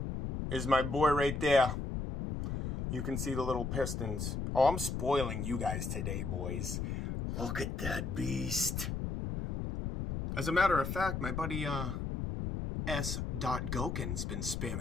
is my boy right there. You can see the little pistons. Oh, I'm spoiling you guys today, boys. Look at that beast. As a matter of fact, my buddy S. Goken's been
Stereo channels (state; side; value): noise; left; rumble, 3 dB below the sound